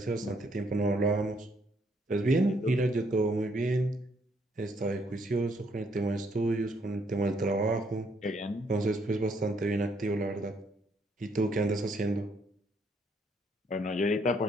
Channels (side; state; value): both; normal; correlation 0.70